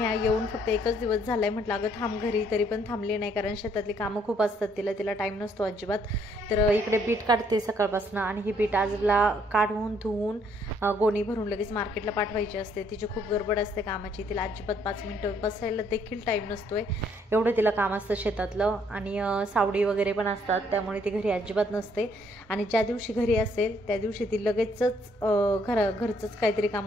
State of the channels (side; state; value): both; normal; correlation 0.67